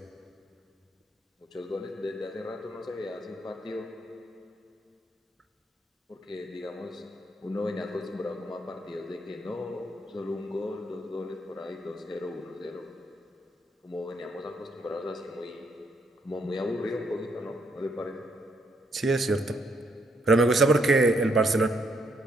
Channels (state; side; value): normal; both; correlation 0.73